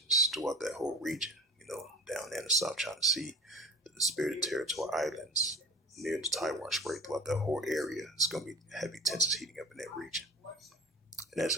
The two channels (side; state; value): both; normal; correlation 0.38